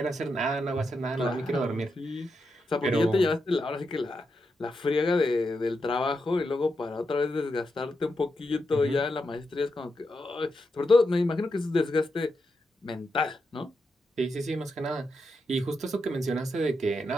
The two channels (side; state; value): both; normal; correlation 0.85